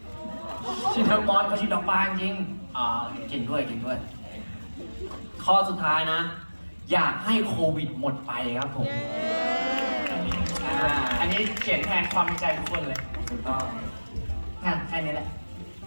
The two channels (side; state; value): both; inverted; correlation -1.00